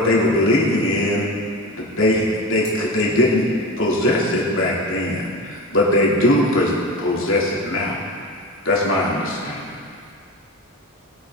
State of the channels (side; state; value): both; normal; correlation 0.28